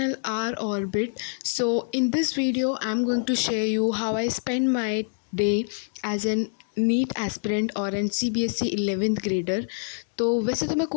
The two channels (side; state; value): right; silent; digital silence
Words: R Orbit. So in this video I'm going to share you how I spend my day as an NEET aspirant और an C B S E 11th grader. तो वैसे तो मैं